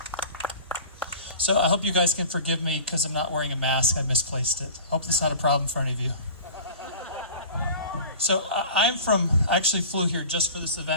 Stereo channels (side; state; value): both; inverted; correlation -0.40